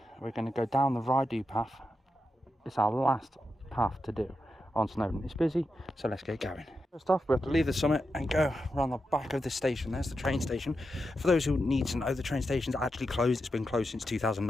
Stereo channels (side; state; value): both; normal; correlation 0.87